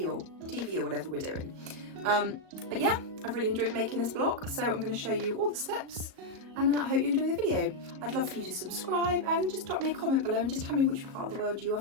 or TV or whatever we're doing. But yeah, I've really enjoyed making this block, so I'm going to show you all the steps and I hope you enjoy the video. I'd love for you to subscribe and just drop me a comment below and just tell me which part of the world you are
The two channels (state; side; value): late; left; 37 ms